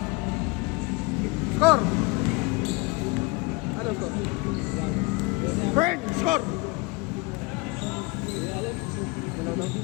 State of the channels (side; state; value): right; quieter; 25.0 dB